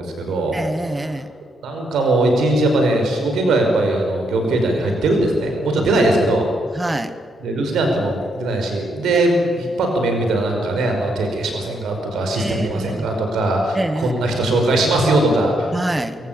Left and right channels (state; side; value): normal; both; correlation 0.76